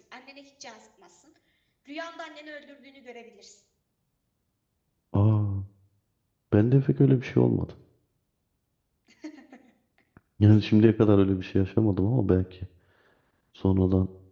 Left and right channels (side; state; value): both; identical; correlation 1.00